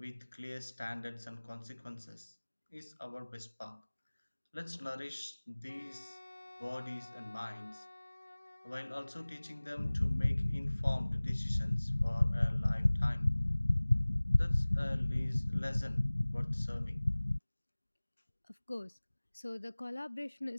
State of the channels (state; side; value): inverted; both; correlation -1.00